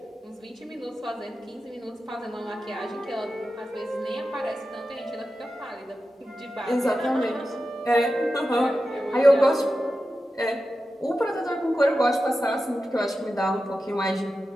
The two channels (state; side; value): normal; both; correlation 0.92